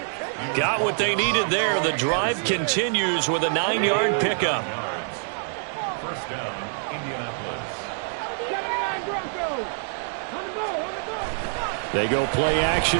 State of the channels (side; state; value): left; silent; digital silence